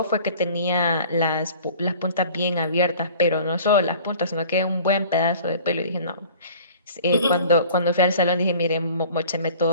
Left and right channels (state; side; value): inverted; both; correlation -0.47